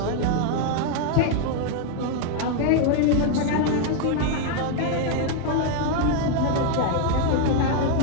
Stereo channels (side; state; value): both; different; correlation 0.01